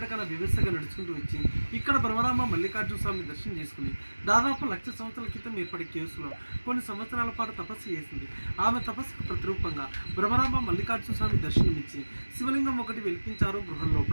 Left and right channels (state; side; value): inverted; both; correlation -1.00